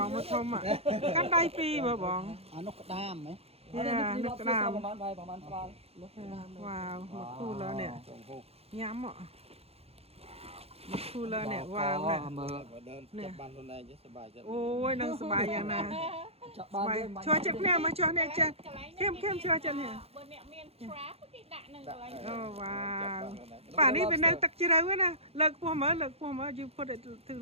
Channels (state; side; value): late; left; 0.29 ms